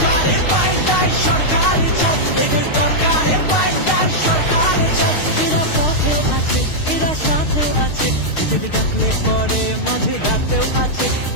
পাল্টাই সরকার চাই, এদের দরকারে পাল্টাই সরকার চাই। এরা পথেও আছে, এরা সাথেও আছে, এদের ডাকলে পরে মাঝে রাতেও আছে।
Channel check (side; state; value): right; late; 6.5 ms